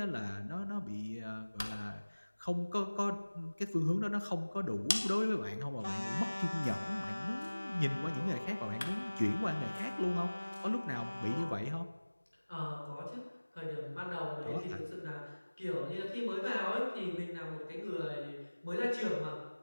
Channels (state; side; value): inverted; both; correlation -1.00